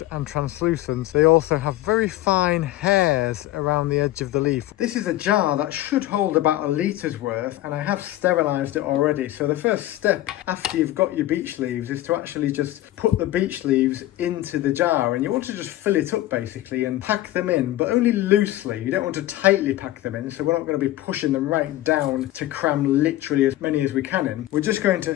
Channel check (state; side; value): quieter; right; 15.2 dB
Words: and translucent, they also have very fine hairs around the edge of the leaf. This is a jar that should hold about a litres worth, and I have sterilised it already. So the first step after you've got your beech leaves is to actually just put the beech leaves into the jar, and you want to just fill it up basically and pack them in, but only loosely. You don't want to tightly pack them in, so we're not going to be pushing them right down to cram literally as many as we can in. We're just going